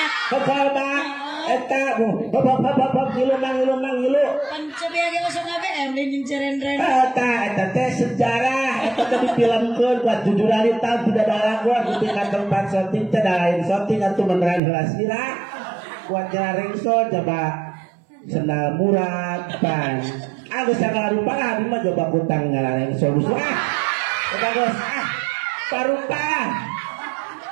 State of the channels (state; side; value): drops out; left; at 14.6 s